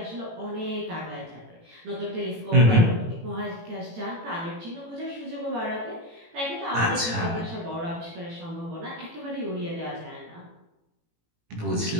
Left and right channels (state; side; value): late; left; 18 ms